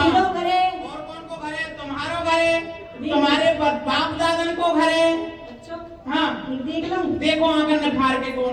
घरे? और कौन को घर है? तुम्हारो घर है, तुम्हारे बाप दादन को घर है। अच्छा हाँ देख लूं। देखो आंगन में फाड़ के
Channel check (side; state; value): both; identical; correlation 1.00